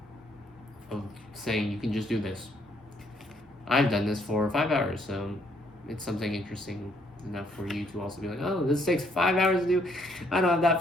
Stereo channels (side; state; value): both; normal; correlation 0.69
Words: saying you can just do this. I've done this for 5 hours, so it's something interesting enough for you to also be like, oh, this takes 5 hours to do. I don't have that